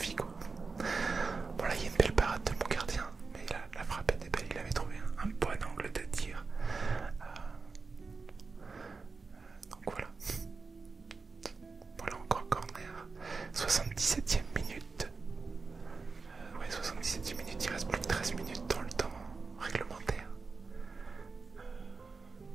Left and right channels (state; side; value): quieter; left; 4.4 dB